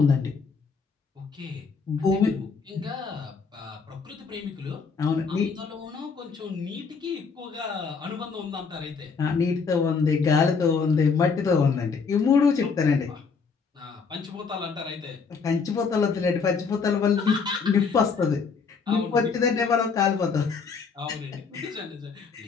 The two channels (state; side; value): quieter; right; 5.3 dB